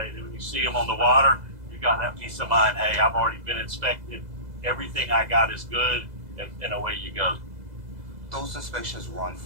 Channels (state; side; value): late; left; 2.0 ms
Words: When you see them on the water, you got that peace of mind. Hey, I've already been inspected. Everything I got is good, and away you go. Those inspections run